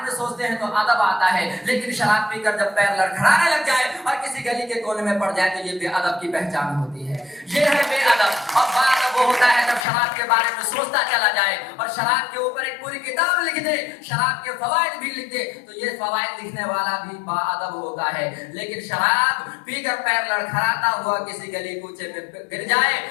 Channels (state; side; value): drops out; right; at 9.9 s